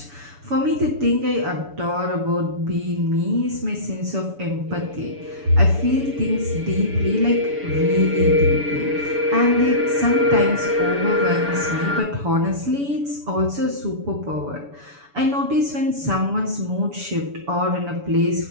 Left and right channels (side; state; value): left; late; 7.0 ms